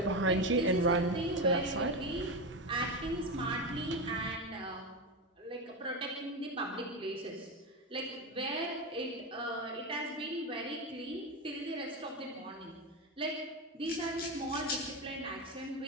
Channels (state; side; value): normal; both; correlation 0.16